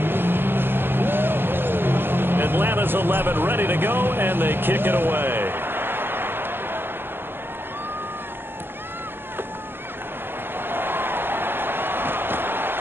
Atlanta's 11 ready to go, and they kick it away.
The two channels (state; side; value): late; left; 0.10 ms